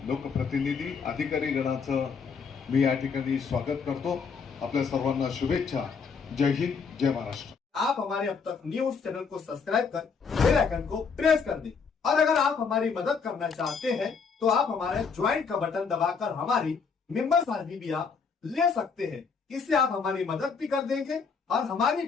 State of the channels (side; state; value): right; quieter; 5.6 dB